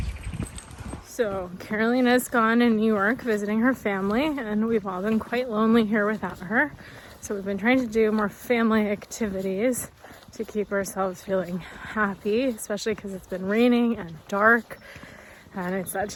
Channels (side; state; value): both; identical; correlation 1.00